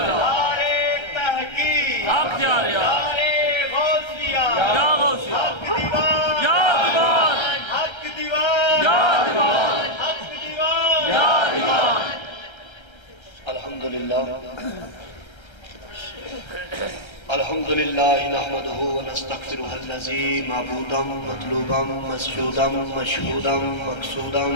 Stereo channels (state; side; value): late; right; 1.3 ms